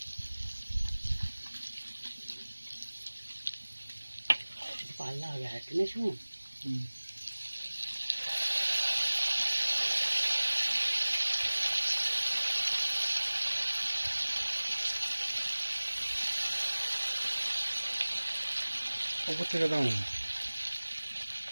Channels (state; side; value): inverted; both; correlation -1.00